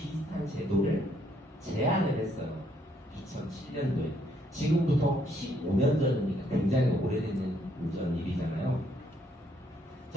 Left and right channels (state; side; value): normal; both; correlation 0.70